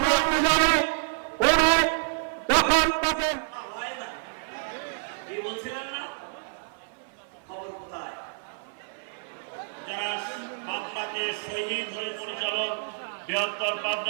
জানি উনি যখন তাকে বলছিলেন না খবর কোথায়? যারা পাবনাকে শহীদ হয়ে পরিচালক বৃহত্তর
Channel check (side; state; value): left; silent; 56 dB below the other